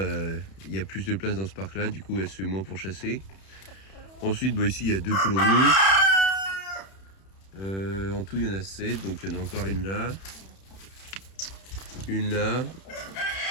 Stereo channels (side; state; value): right; late; 31 ms